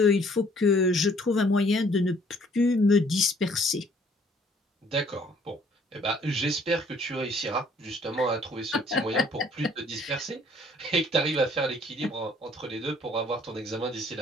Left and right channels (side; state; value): both; normal; correlation 0.60